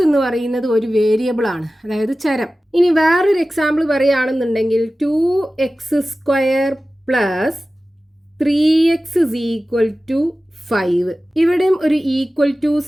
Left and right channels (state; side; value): normal; both; correlation 0.96